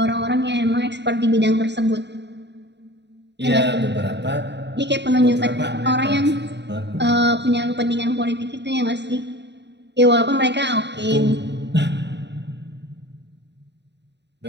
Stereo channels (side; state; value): left; late; 0.50 ms